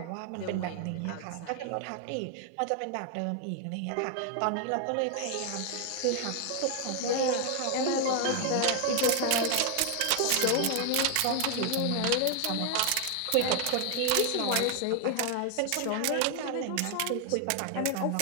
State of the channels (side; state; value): both; different; correlation 0.00